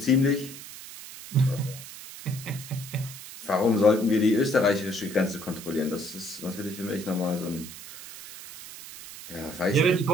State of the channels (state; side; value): noise; right; hiss, 14 dB below the sound